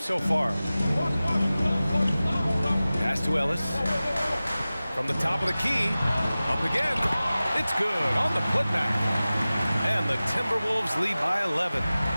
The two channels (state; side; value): inverted; both; correlation -0.97